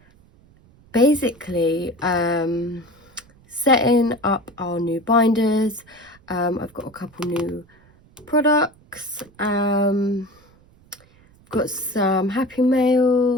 basically setting up our new binders. I've got a couple new products. Got some Happy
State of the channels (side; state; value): right; noise; rumble, 29 dB below the sound